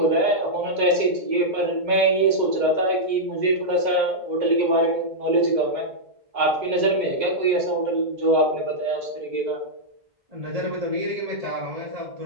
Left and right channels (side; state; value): left; late; 2.0 ms